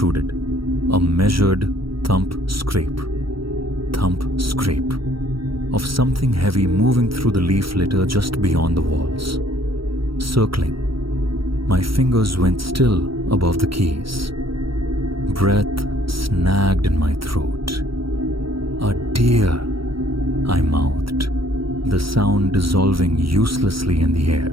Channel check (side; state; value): left; late; 0.75 ms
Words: A measured thump-scrape of something heavy moving through the leaf litter just beyond the walls. Circling, my fingers went still above the keys. Breath snagged in my throat. "A deer," I mouthed, the sound dissolving uselessly in the